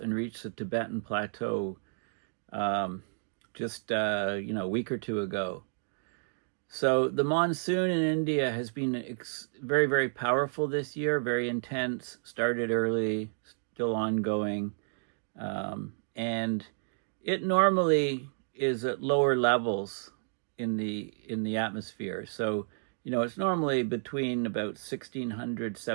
reach the Tibetan Plateau just a week or two ago? So the monsoon in India has been very, very powerful this year, very intense, started early, still ongoing. And it normally is at lower levels in the atmosphere. So, it's normally between about 1,600,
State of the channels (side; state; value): left; silent; digital silence